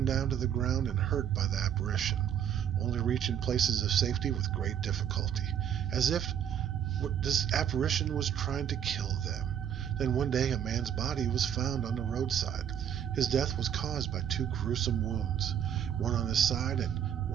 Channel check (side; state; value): left; quieter; 9.2 dB